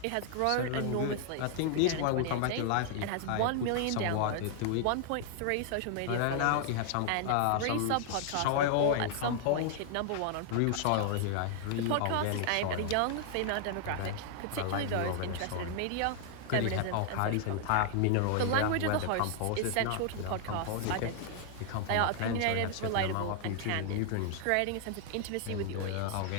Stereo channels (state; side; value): different; both; correlation 0.00